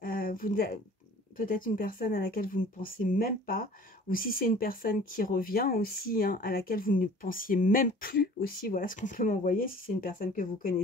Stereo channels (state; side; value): normal; both; correlation 0.48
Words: peut-être une personne à laquelle vous ne pensez même pas, ou si c'est une personne qui revient aussi, hein, à laquelle vous ne pensiez même plus aussi, voilà ce qu'on peut m'envoyer, si c'est une personne que vous